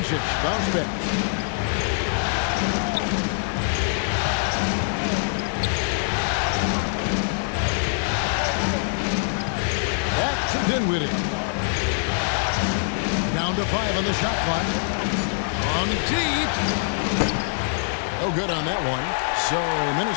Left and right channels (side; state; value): right; silent; 63 dB below the other